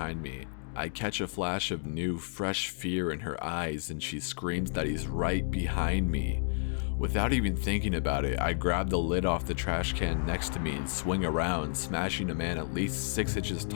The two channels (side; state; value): right; silent; digital silence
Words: me. I catch a flash of new, fresh fear in her eyes and she screams that he's right behind me. Without even thinking about it, I grab the lid off the trash can next to me and swing around, smashing a man at least 6 inches